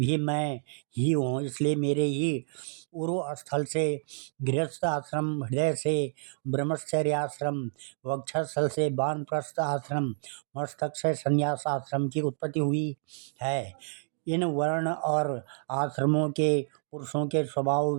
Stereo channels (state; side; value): silent; left; digital silence